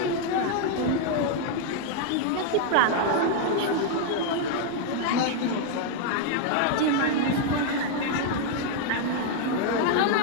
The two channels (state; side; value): different; both; correlation 0.00